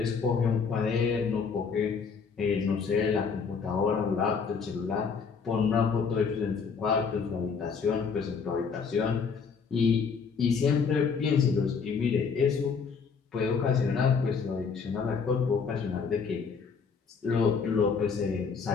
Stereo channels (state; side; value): quieter; right; 5.7 dB